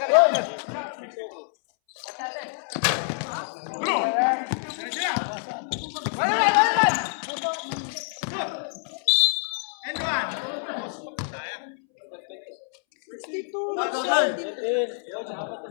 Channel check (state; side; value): silent; right; 61 dB below the other